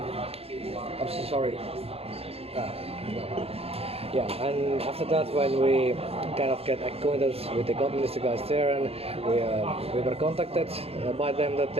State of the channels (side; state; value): left; late; 0.29 ms